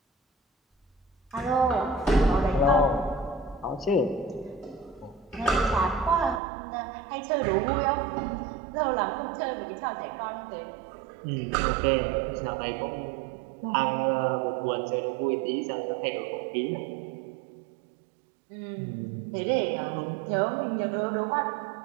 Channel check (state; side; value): drops out; left; at 6.4 s